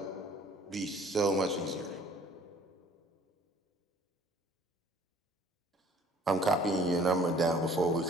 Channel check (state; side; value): normal; both; correlation 0.54